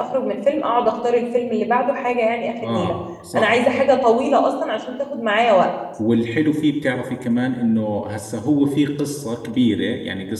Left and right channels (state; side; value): identical; both; correlation 1.00